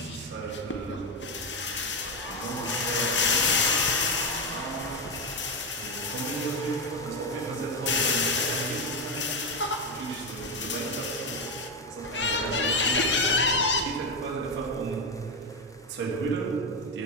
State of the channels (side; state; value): both; normal; correlation 0.10